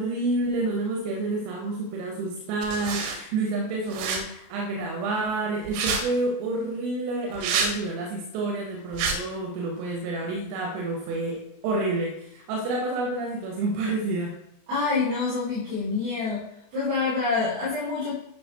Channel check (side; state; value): left; late; 28 ms